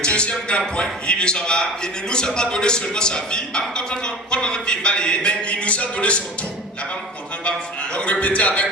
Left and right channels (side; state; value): both; normal; correlation 0.37